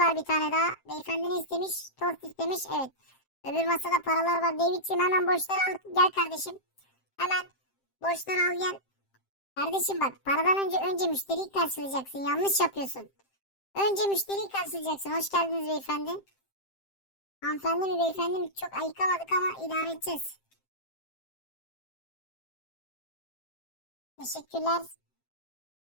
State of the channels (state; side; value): late; right; 7.6 ms